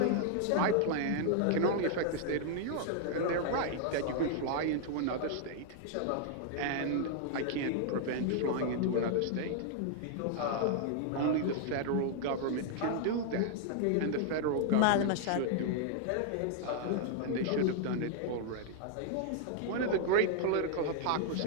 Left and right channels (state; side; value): different; both; correlation -0.01